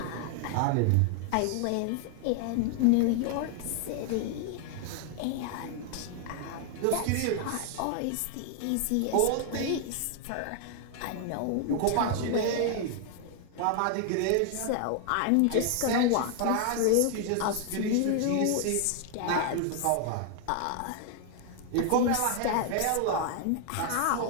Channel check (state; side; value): different; both; correlation 0.00